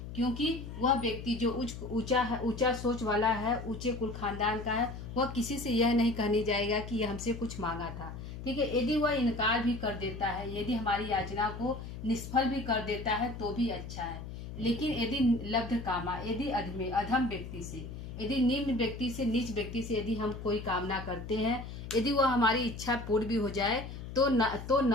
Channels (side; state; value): left; noise; hum, 10 dB below the sound